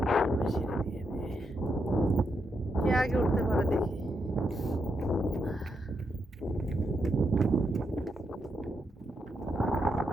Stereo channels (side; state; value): both; normal; correlation 0.82